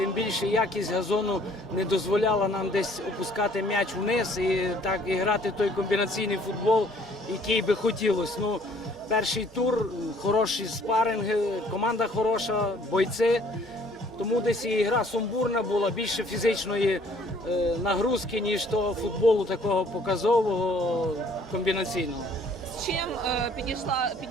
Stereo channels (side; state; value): both; normal; correlation 0.58